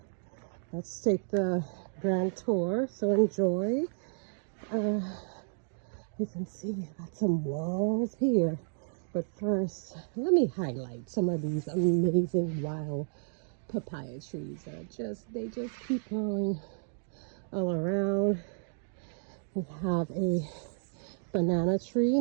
Let's take the grand tour, so enjoy. You can see got some walls here, but first let me highlight some of these amazing wild papaya trees that they just keep growing all around. We have a banana tree.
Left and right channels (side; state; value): left; silent; digital silence